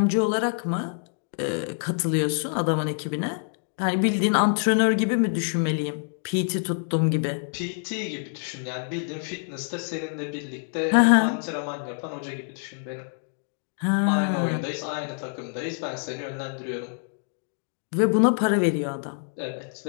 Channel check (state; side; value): silent; right; digital silence